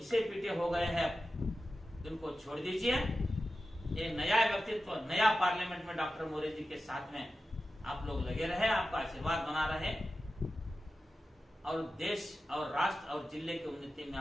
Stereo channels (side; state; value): both; normal; correlation 0.93